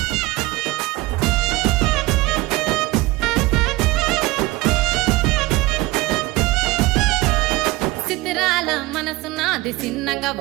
సిద్ధిరాల మనసు నాది చిన్నగా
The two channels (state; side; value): quieter; left; 20.3 dB